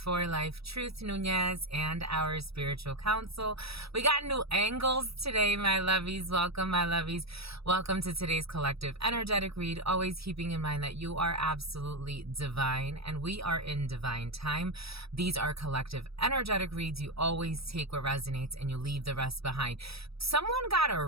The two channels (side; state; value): left; late; 0.77 ms